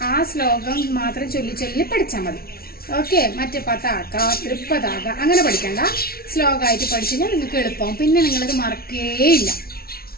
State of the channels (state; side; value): late; right; 0.44 ms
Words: ആ ശ്ലോകം മാത്രം ചൊല്ലി ചൊല്ലി പഠിച്ചാൽ മതി. ഓക്കെ. മറ്റേ പതാക, തൃപ്പതാക അങ്ങനെ പഠിക്കണ്ട. ശ്ലോകമായിട്ട് പഠിച്ചു കഴിഞ്ഞാൽ നിങ്ങൾക്ക് എളുപ്പമാവും. പിന്നെ നിങ്ങളത് മറക്കേയില്ല.